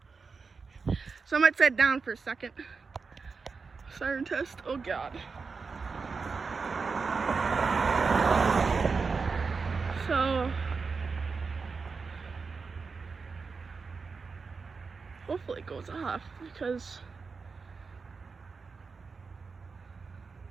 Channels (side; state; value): left; quieter; 4.8 dB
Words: So I might set it down for a second. Siren test. Oh God. So hopefully it goes off because